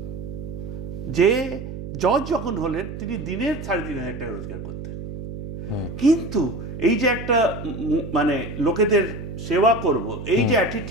যে জজ যখন হলেন তিনি দিনের 3500 টাকা রোজগার করতেন। কিন্তু এই যে একটা মানে লোকেদের সেবা করব, এই যে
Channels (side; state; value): right; noise; hum, 8 dB below the sound